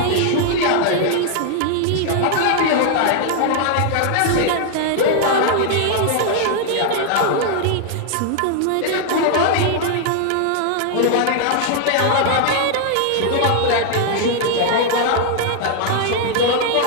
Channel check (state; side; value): different; both; correlation 0.00